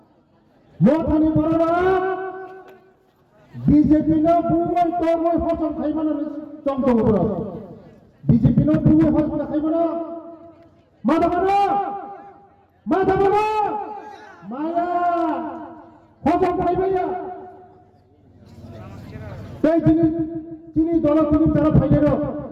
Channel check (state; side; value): identical; both; correlation 1.00